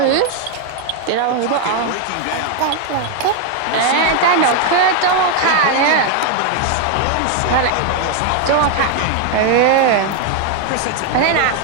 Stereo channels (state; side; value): different; both; correlation 0.01